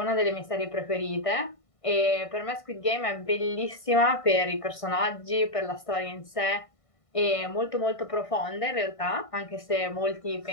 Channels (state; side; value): late; right; 1.5 ms